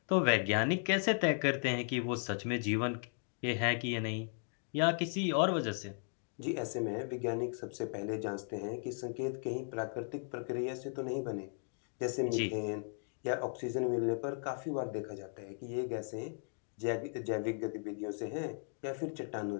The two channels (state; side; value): silent; right; 53 dB below the other